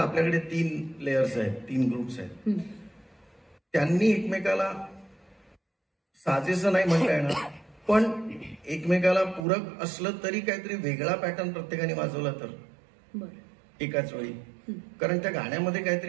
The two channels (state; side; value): drops out; left; at 9.5 s